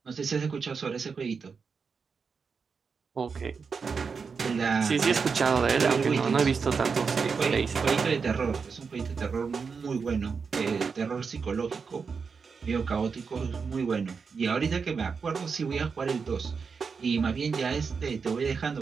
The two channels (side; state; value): left; quieter; 5.4 dB